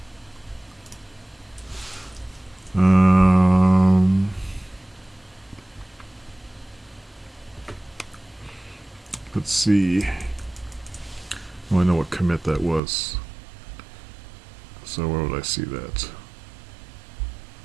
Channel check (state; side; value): drops out; left; at 12.8 s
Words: Let's see. Oh, I know what commit that was. So where would I see that?